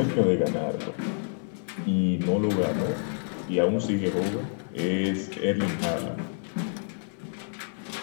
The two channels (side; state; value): right; silent; digital silence